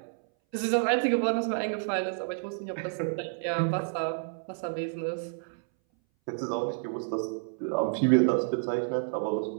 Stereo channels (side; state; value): left; silent; 58 dB below the other